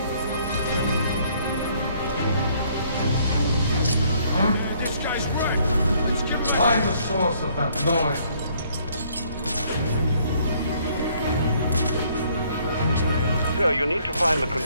This guy's right. Let's get back. Find the source of that noise. Victor, you need to find the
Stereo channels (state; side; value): inverted; both; correlation -0.64